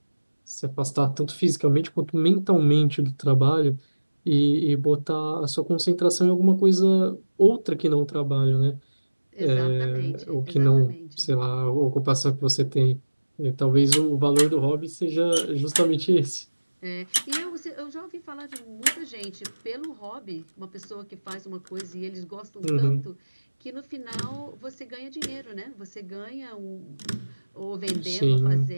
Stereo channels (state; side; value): inverted; both; correlation -1.00